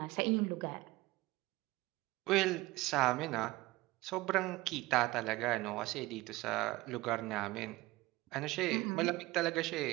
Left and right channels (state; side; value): quieter; left; 19.6 dB